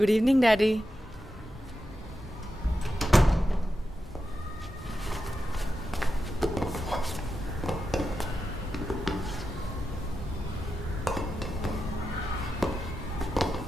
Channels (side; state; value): both; normal; correlation 0.89